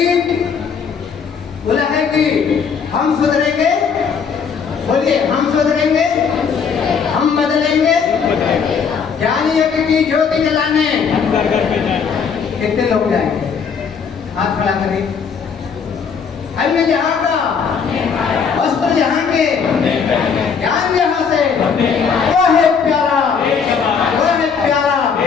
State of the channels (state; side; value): quieter; right; 6.3 dB